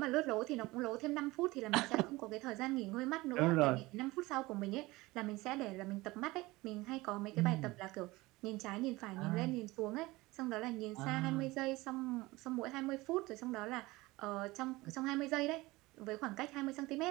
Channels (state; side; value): quieter; left; 20.7 dB